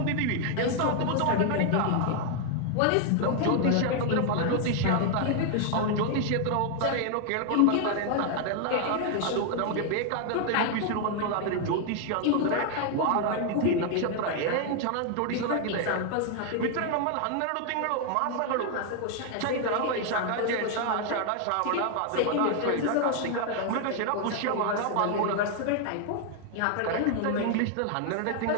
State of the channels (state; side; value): different; both; correlation 0.00